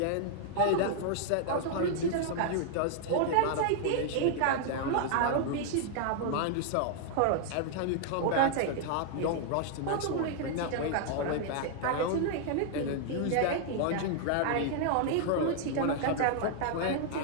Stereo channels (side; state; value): both; different; correlation -0.01